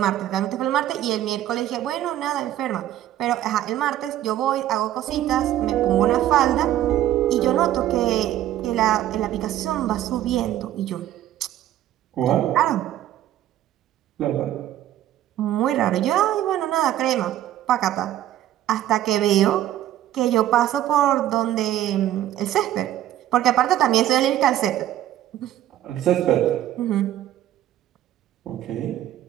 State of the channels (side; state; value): left; quieter; 12.7 dB